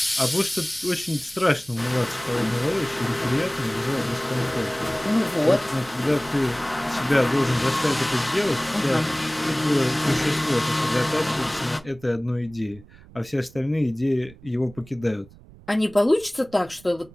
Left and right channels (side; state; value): right; noise; rumble, 22 dB below the sound